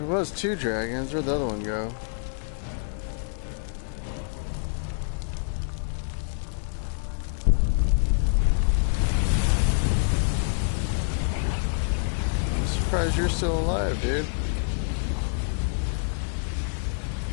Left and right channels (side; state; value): right; silent; digital silence